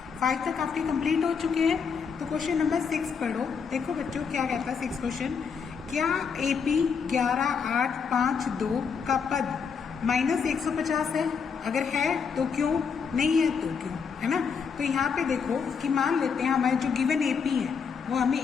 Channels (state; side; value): quieter; right; 6.1 dB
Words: 5 तक आपके कंप्लीट हो चुके हैं, तो क्वेश्चन नंबर 6 पढ़ो। देखो बच्चों क्या कहता है 6 क्वेश्चन। क्या AP 11852 का पद -150 है? अगर है तो क्यों, नहीं है तो क्यों, है ना। तो यहाँ पे देखो कि मान लेते हैं हमारे जो गिवन AP है वो हमें